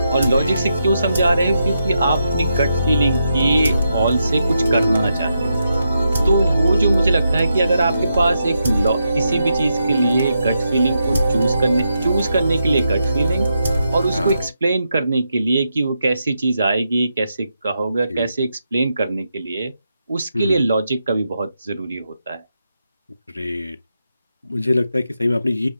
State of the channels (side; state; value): both; inverted; correlation -0.84